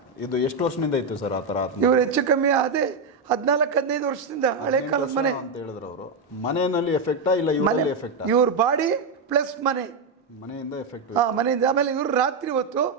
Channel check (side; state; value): left; quieter; 3.9 dB